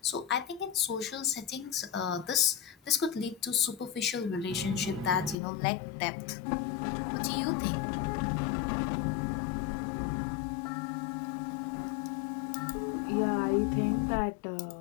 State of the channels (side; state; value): right; drops out; at 5.4 s